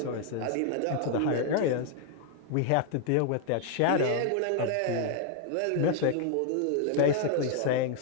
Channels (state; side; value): different; both; correlation 0.00